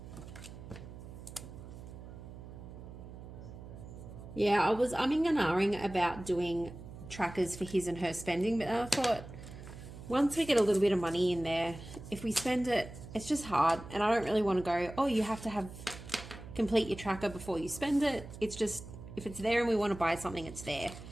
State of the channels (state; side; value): noise; right; hum, 14 dB below the sound